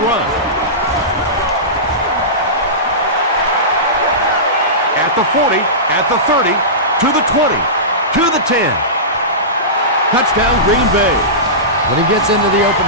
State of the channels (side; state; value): both; normal; correlation -0.19